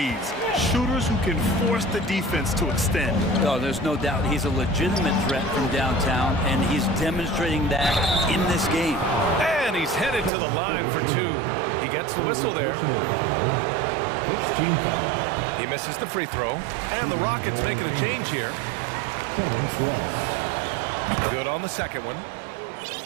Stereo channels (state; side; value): drops out; left; at 10.3 s